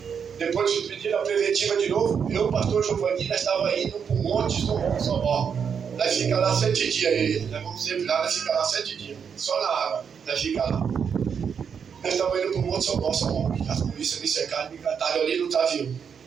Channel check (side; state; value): left; quieter; 7.0 dB